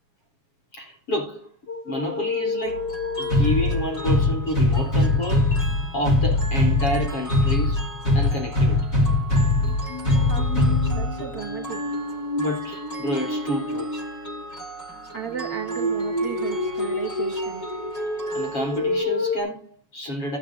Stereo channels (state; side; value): late; right; 7.3 ms